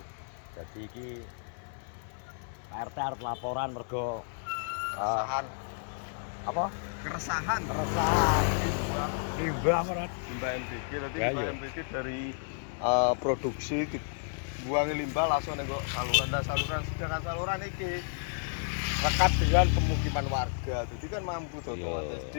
Jadi iki Pak RT arep laporan mergo keresahan. Apa? Keresahan Limbah apa, Red? limbah MBG tadi. Ya, limbah iya. MBG dari produksi dibuangi limbah langsung nengok saluran. Dan saluran, sedangkan saluran iki lekat dengan pemukiman warga, jadi kan mampu tuh. Iya.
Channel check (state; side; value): silent; right; digital silence